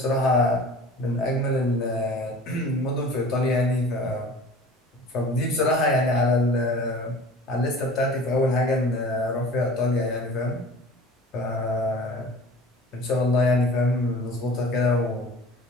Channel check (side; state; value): both; normal; correlation 0.43